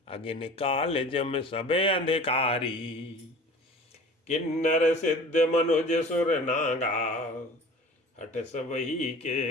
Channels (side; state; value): both; normal; correlation 0.42